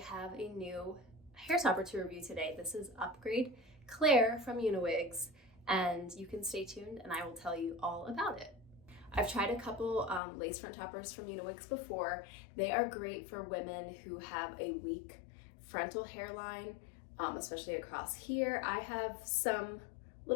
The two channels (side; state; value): right; drops out; at 10.2 s